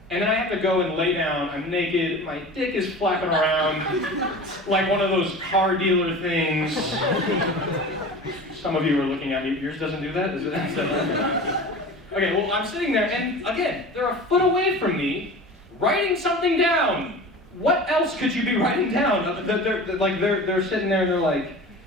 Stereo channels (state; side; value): normal; both; correlation 0.35